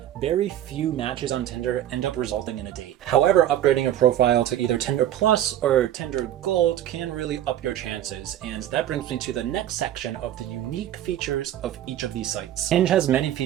very few matches on Tinder end up resulting in a date. However, upgrading a profile to either Tinder Plus or Tinder Gold can really up your chances, and that brings me to the next section of the unique features of each of these sites. Hinge has many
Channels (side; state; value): left; quieter; 11.9 dB